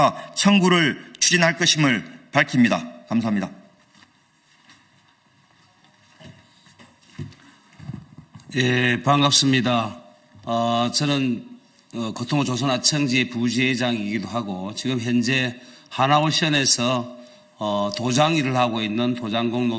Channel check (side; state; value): both; identical; correlation 1.00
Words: 청구를 추진할 것임을 밝힙니다. 감사합니다. 예, 반갑습니다. 저는 고통호 조선하청지의 부지회장이기도 하고 지금 현재 하나오션에서 도장 일을 하고 있는 도장공